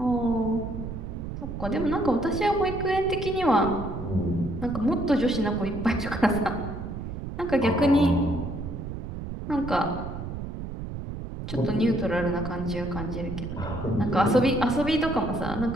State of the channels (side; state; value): right; noise; rumble, 7 dB below the sound